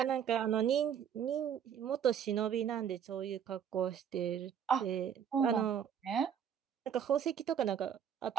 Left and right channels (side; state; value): left; quieter; 8.5 dB